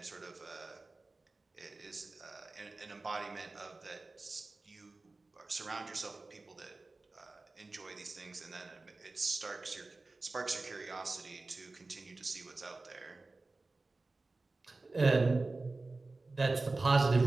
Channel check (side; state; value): left; quieter; 3.4 dB